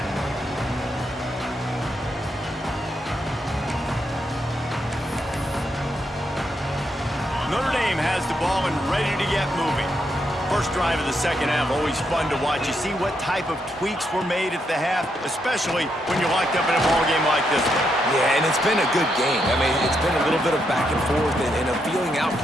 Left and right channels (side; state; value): both; normal; correlation 0.80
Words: Notre Dame has the ball and ready to get moving. First drive of the second half, always fun to watch. You see what type of tweaks were made at the half, especially when you're locked up in a ball game like this one. Yeah, and it's been a good game. I mean, it's been a little bit of back and forth and a feeling out